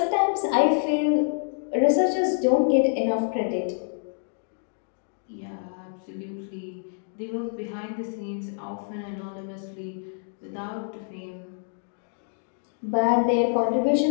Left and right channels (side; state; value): right; silent; digital silence